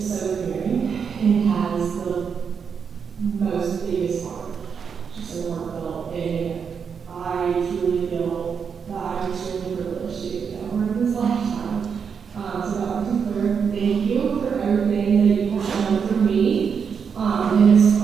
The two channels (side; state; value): left; quieter; 6.5 dB